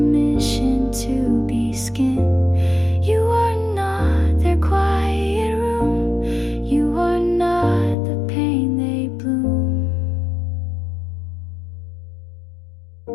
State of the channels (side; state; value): right; drops out; at 8.0 s